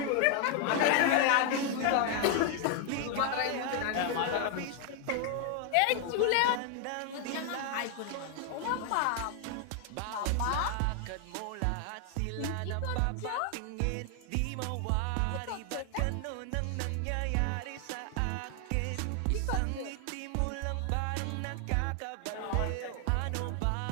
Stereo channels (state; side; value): different; both; correlation 0.00